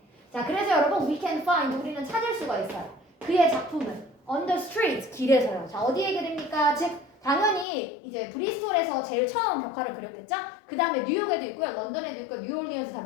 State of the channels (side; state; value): right; drops out; at 7.7 s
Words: 자 그래서 여러분 we can find 우리는 찾을 수가 있어요. 그의 작품을 on the street 길에서요. 자 어디에 그립니까? 즉 당연히 이제 브리스톨에서 제일 처음 벽화를 그렸겠죠? 그 다음에 뉴욕에도 있고요. 런던에도 있고 뉴올리언스 다